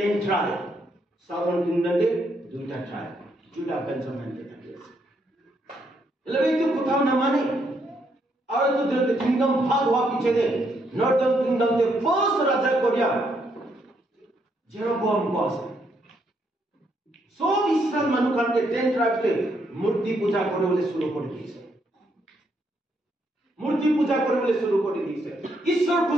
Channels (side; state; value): both; normal; correlation 0.75